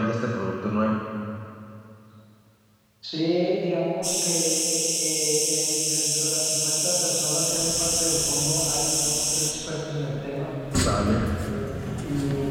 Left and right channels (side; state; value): both; identical; correlation 1.00